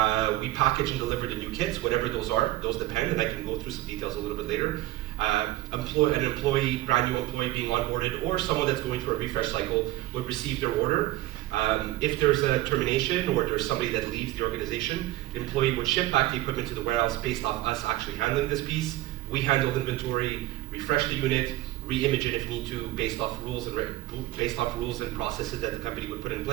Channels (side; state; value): left; quieter; 16.3 dB